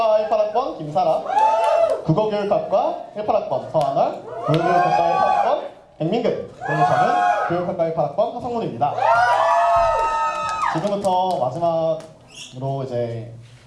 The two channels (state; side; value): identical; both; correlation 1.00